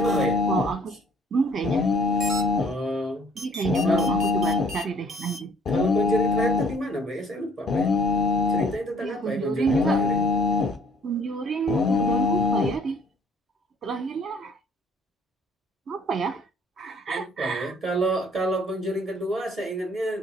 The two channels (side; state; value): both; normal; correlation 0.58